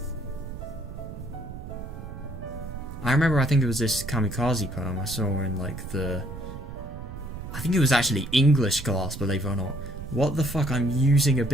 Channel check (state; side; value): noise; right; rumble, 10 dB below the sound